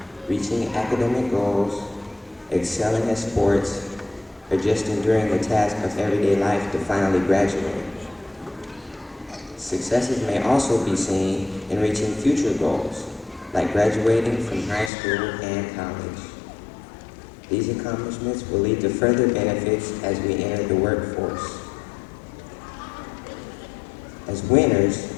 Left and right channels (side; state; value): right; drops out; at 14.9 s